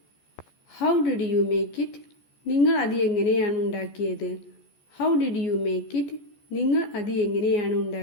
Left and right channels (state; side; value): late; right; 14 ms